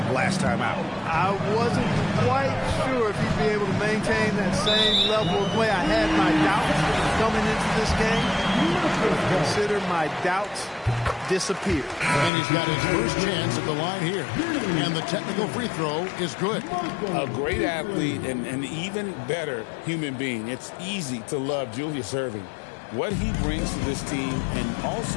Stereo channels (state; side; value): drops out; right; at 12.3 s